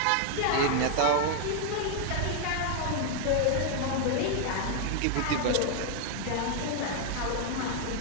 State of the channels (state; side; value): different; both; correlation 0.00